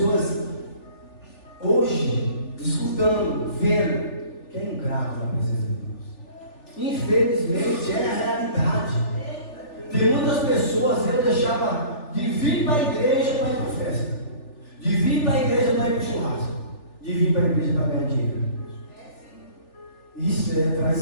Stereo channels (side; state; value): right; late; 3.4 ms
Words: hoje escutando, vendo, que é ingrato na presença de Deus. Infelizmente é a realidade. Tem muitas pessoas, eu deixava de vir para a igreja para ir para a festa, de vir para a igreja para ir para o churrasco, de vir para a igreja para ganhar dinheiro. Isso é